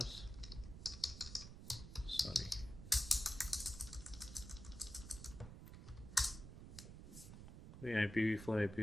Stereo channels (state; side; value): noise; right; rumble, 11 dB below the sound